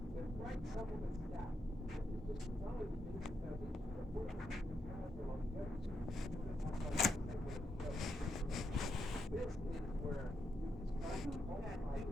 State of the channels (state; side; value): normal; both; correlation 0.81